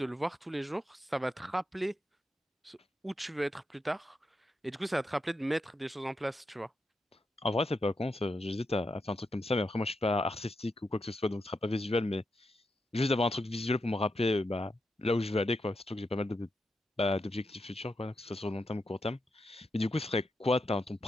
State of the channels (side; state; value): both; normal; correlation 0.85